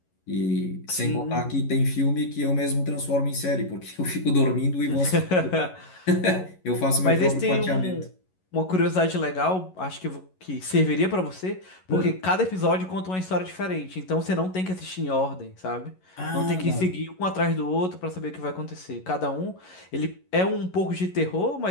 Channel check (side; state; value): right; late; 11 ms